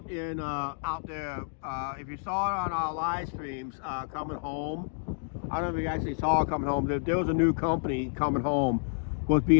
in out there. If you saw it on our live streams, coming home. I don't know if you actually saw it coming home. There was a new company coming home, was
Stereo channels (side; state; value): right; silent; digital silence